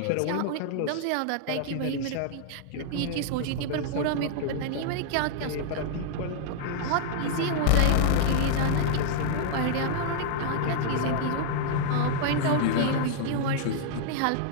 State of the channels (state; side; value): different; both; correlation -0.01